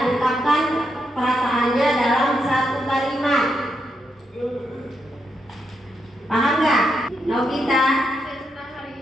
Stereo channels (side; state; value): both; normal; correlation 0.82